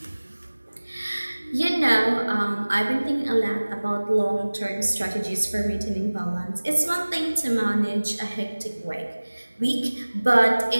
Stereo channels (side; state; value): both; inverted; correlation -1.00